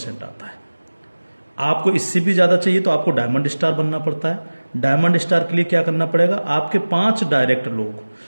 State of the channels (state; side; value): inverted; both; correlation -1.00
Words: आता है। आपको इससे भी ज्यादा चाहिए तो आपको डायमंड स्टार बनना पड़ता है। डायमंड स्टार के लिए क्या करना पड़ेगा? आपके 5 डायरेक्ट लोग